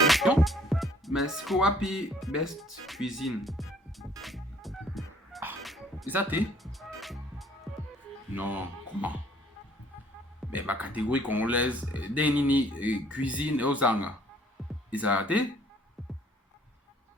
mais ce qu'on a puis Best Cuisine. C'est ça, t'es? Non, comment? Mais ma catégorie congolaise, Denini, cuisine et Ozanga. Ils ont raté?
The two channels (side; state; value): both; normal; correlation 0.59